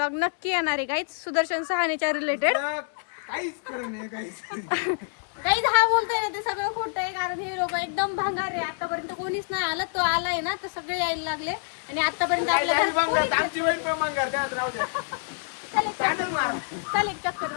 नक्की येणार आहे गाईज सुदर्शन सहानेच्या रिलेटेड. काही हा बोलतोय ना ते सगळं खोटं आहे, कारण हे लोक एकदम भंगार आहे. आतापर्यंत कोणीच नाही आलं. तो आलाय ना तर सगळे यायला लागले. आणि आतापर्यंत आपल्या घरात चाल एक चक्कर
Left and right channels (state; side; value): silent; right; digital silence